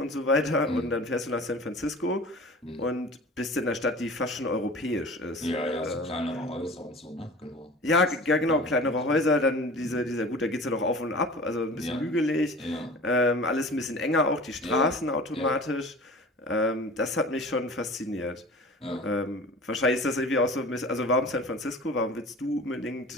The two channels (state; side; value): normal; both; correlation 0.40